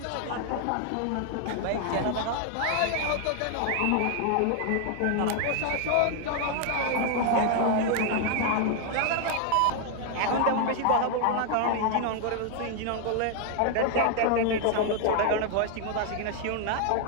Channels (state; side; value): different; both; correlation 0.00